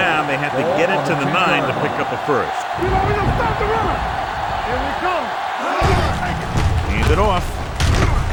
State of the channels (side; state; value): both; identical; correlation 1.00